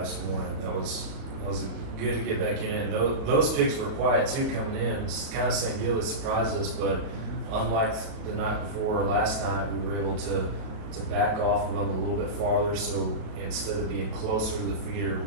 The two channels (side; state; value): left; late; 37 ms